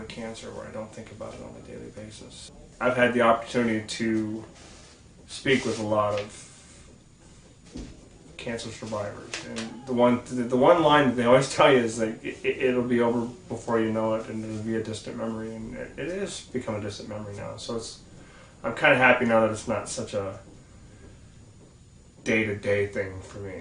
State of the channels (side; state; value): both; identical; correlation 1.00